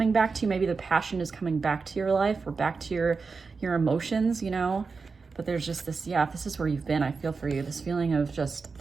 back to you. Maybe the passion is coming back to your life or back to your emotions, you know? But there's just this, yeah, if this is where you've been, I feel for you. This feeling of just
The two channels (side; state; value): left; quieter; 4.7 dB